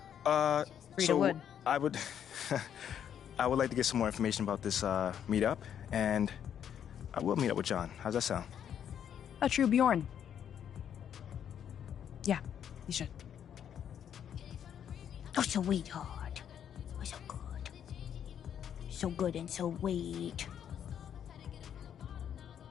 Frida so would. I would, I would like to get some more information about this meetup, and I will meet up with John. How's that sound? A true Bjorn. Yeah, you should. Oh, sweetheart. Oh, so good. So good and so sweet.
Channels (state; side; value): quieter; right; 9.1 dB